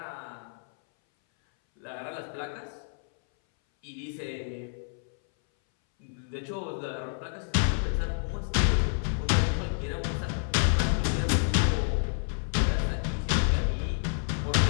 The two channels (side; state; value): right; silent; 59 dB below the other